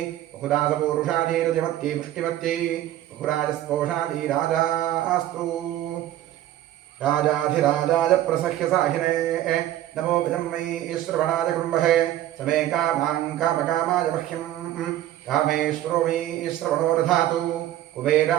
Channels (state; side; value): quieter; left; 13.2 dB